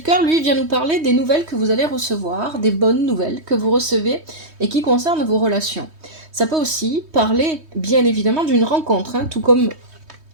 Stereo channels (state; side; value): late; left; 3.2 ms